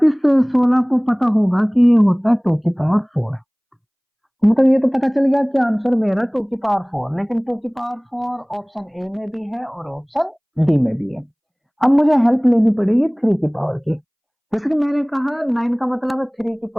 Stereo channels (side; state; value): both; identical; correlation 1.00